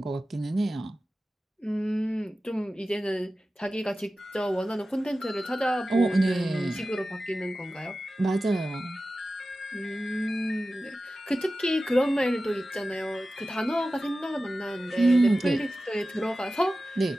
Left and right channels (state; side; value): normal; both; correlation 0.94